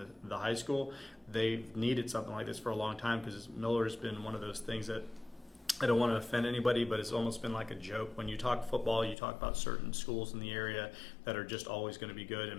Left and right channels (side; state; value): right; drops out; at 9.2 s